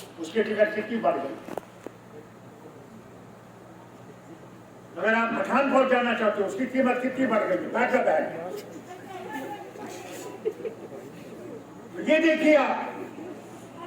उसकी टिकट कितनी बढ़ गई। अगर आप पठानकोट जाना चाहते हो, उसकी कीमत कितनी बढ़ गई। बैठक है, ये देखिए आप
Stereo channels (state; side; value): identical; both; correlation 1.00